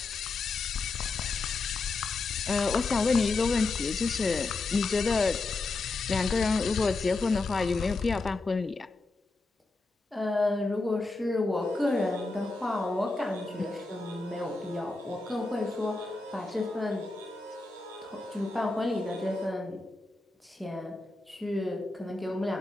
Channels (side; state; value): right; quieter; 3.4 dB